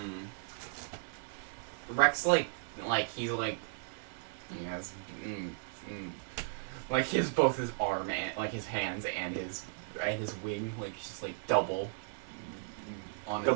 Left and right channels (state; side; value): silent; left; 54 dB below the other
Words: Rex he has like both his arm and his hands and his wing just double on